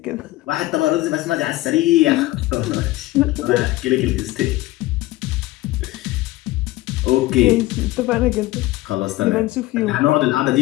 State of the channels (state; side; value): quieter; right; 18.1 dB